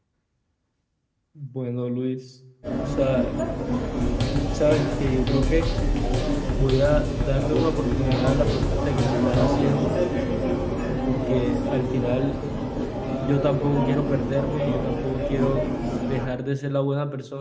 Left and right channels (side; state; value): both; identical; correlation 1.00